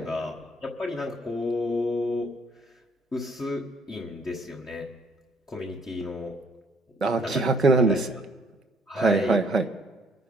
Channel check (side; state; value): both; normal; correlation 0.63